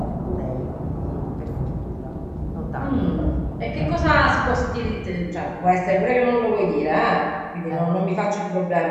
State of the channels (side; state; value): both; identical; correlation 1.00